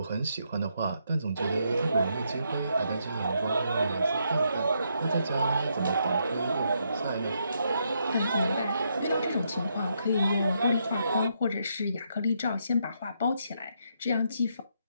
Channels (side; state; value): both; inverted; correlation -0.77